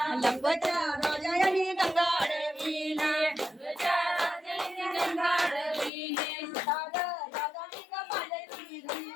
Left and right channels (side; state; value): right; drops out; at 5.9 s